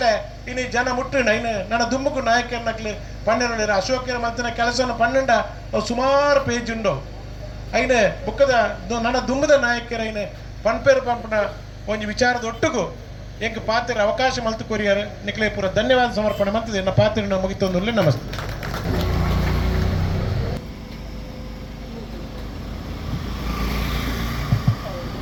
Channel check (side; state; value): both; identical; correlation 1.00